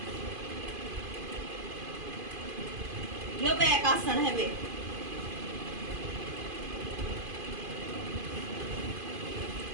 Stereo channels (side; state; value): left; late; 2.5 ms